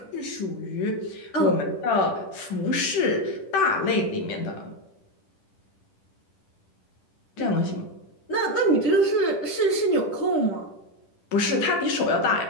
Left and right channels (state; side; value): late; right; 10 ms